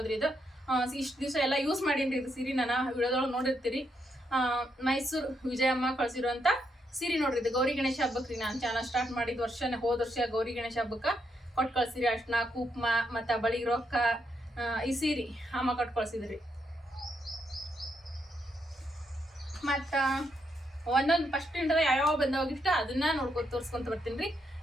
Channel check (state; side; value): normal; both; correlation 0.79